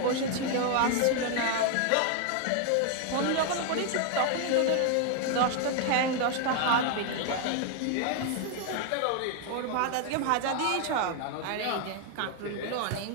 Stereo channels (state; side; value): different; both; correlation 0.00